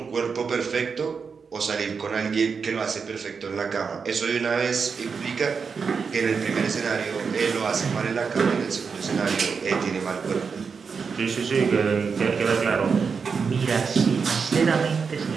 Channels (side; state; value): left; quieter; 5.6 dB